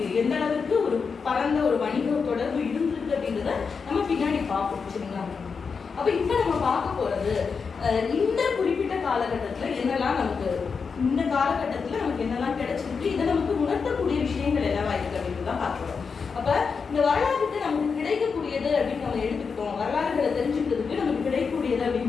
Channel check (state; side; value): quieter; right; 5.5 dB